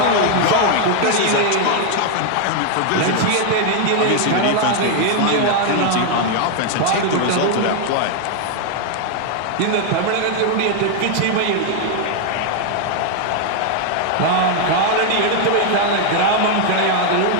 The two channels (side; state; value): both; different; correlation 0.00